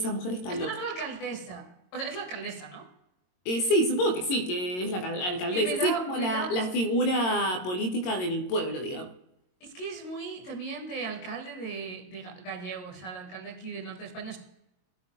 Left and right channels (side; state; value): right; late; 22 ms